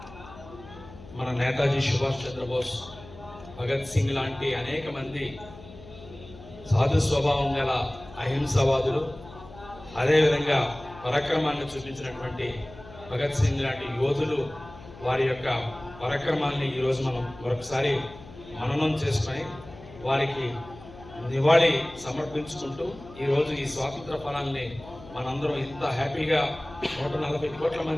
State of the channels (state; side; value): noise; left; hum, 18 dB below the sound